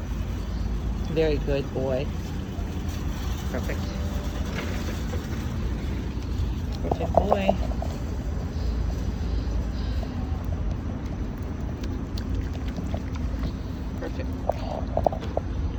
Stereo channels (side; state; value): both; identical; correlation 1.00